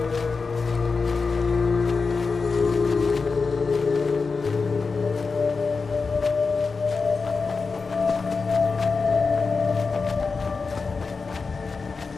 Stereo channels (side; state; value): right; quieter; 4.6 dB